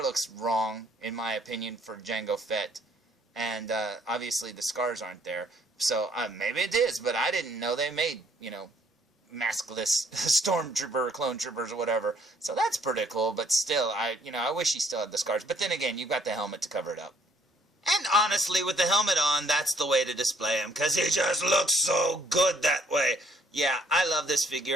looks wrong, in my opinion, for Jango Fett. And obviously the scars aren't there. So maybe it is, but I didn't know they made, maskless stormtrooper or clone troopers or whatever. So that's pretty cool, but still, I wish he still had the scars. But then again, you've got the helmet to cover it up. And honestly, with the helmet on, that's the way to display him, because he just looks so good that way. Yeah, I love this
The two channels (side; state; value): both; normal; correlation 0.64